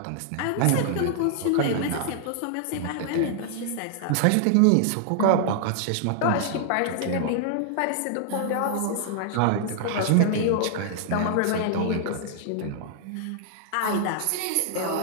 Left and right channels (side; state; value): both; different; correlation -0.01